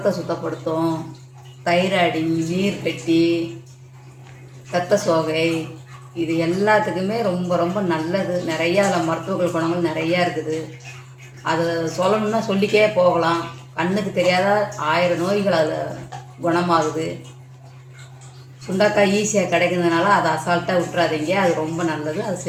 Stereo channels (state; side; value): identical; both; correlation 1.00